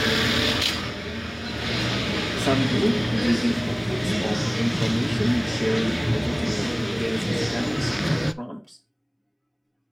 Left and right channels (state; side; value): identical; both; correlation 1.00